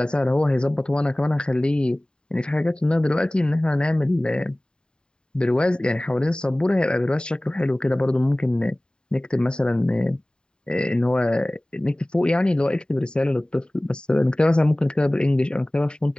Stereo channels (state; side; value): late; right; 0.048 ms